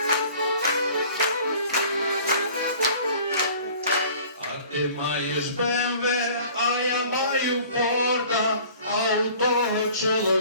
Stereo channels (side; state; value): both; inverted; correlation -0.49